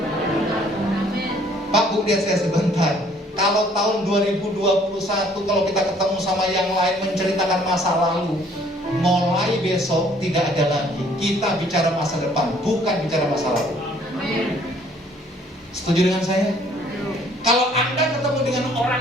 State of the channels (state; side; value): normal; both; correlation 0.60